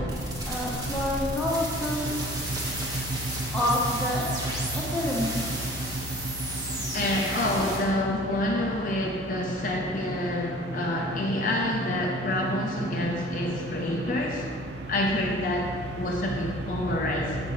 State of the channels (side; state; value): both; normal; correlation 0.47